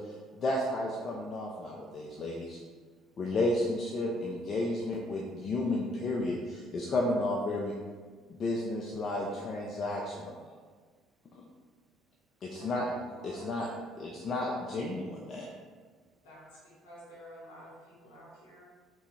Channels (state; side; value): normal; both; correlation 0.67